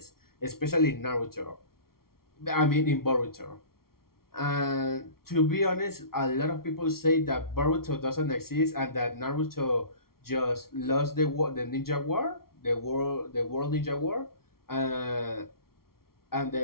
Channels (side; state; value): right; late; 0.94 ms